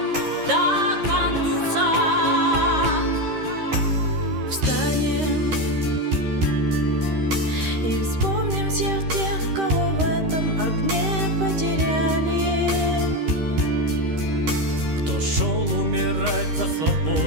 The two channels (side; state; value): left; late; 13 ms